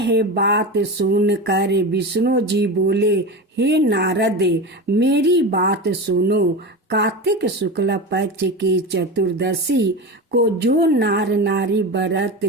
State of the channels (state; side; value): normal; both; correlation 0.24